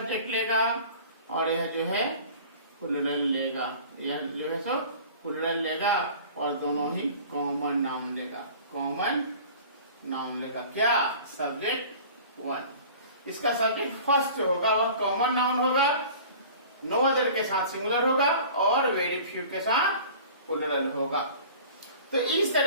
लेगा, और यह जो है प्लूरल लेगा, यह जो है सो प्लूरल लेगा, और दोनों ही कॉमन नाउन लेगा, कॉमन नाउन लेगा। क्या, सब्जेक्ट 1। इसका सब्जेक्ट फर्स्ट होगा वह कॉमन नाउन होगा, नो अदर के साथ सिंगुलर होगा, और वेरी फ्यू के साथ प्लूरल होगा। तो इस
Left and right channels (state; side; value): inverted; both; correlation -0.44